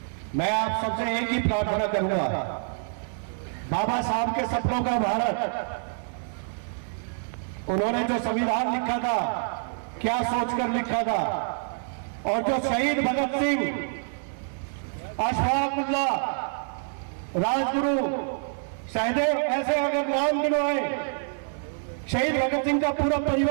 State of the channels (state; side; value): silent; left; 60 dB below the other